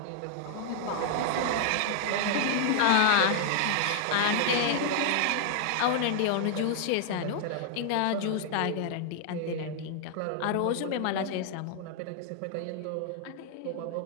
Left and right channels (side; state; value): both; different; correlation -0.01